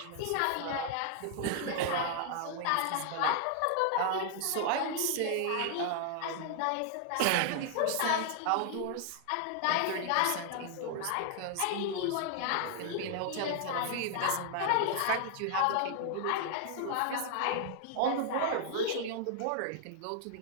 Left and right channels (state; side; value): different; both; correlation 0.00